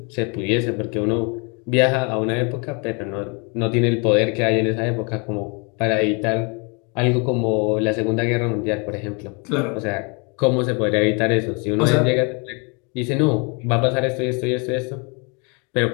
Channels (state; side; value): quieter; right; 33.2 dB